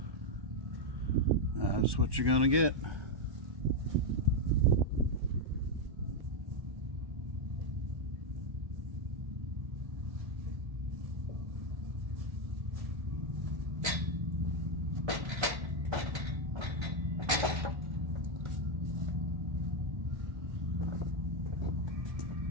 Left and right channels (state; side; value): late; left; 1.3 ms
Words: that's what you're gonna get.